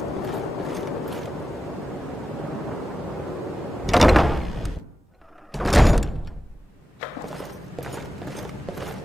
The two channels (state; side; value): normal; both; correlation 0.92